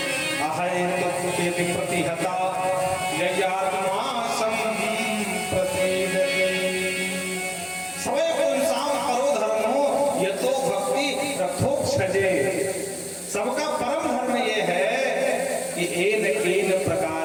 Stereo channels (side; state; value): both; identical; correlation 1.00